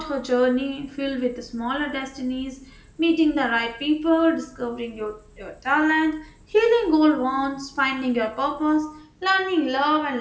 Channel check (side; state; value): both; identical; correlation 1.00